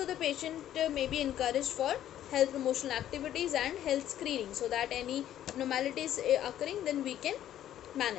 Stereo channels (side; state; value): right; quieter; 11.6 dB